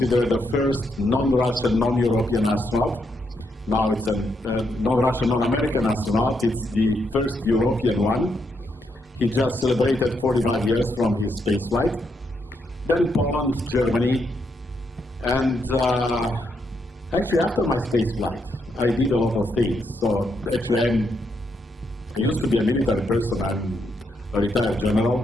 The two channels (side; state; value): both; normal; correlation 0.79